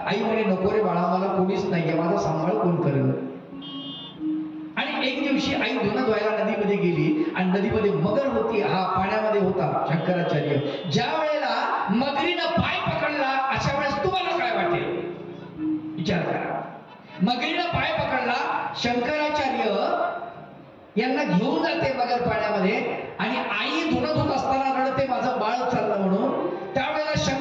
आई म्हणे नको रे बाळा, मला कोणीच नाहीये, माझा सांभाळ कोण करेल? आणि एक दिवशी आई धुणं धुवायला नदीमध्ये गेली आणि नदीमध्ये मगर होती, हा पाण्यामध्ये होता शंकराचार्य. ज्या वेळेला मगरीनं पाय पकडला, अशा वेळेस तुम्हाला काय वाटेल? विचार करा. मगरीनं पाय पकडला, शंकराचार्य यांना घेऊन जाते मगर पाण्यामध्ये, आणि आई धुणं धुत असताना रडते माझं बाळ चाललं म्हणून. त्यावेळेला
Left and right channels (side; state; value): both; identical; correlation 1.00